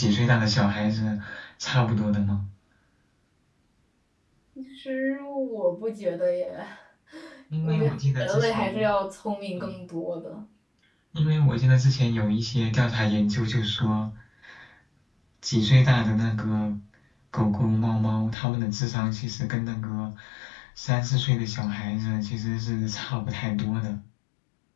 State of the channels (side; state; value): right; drops out; at 18.4 s